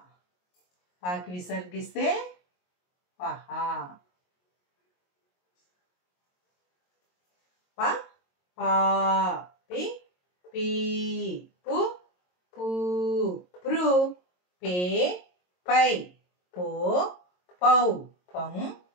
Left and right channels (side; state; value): right; late; 22 ms